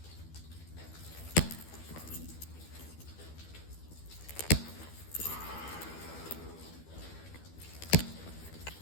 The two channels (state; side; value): late; right; 12 ms